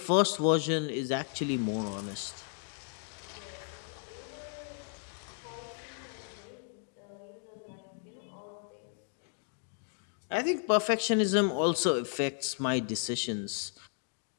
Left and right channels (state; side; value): silent; right; 55 dB below the other